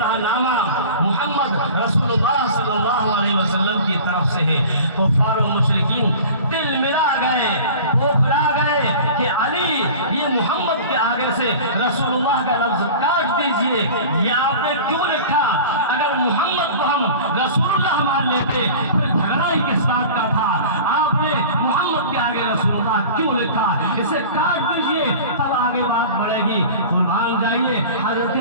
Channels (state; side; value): inverted; both; correlation -0.39